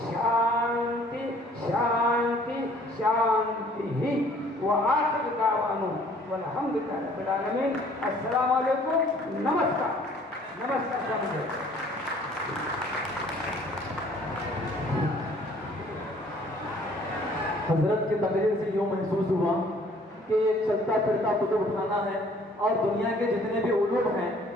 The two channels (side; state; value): both; normal; correlation 0.57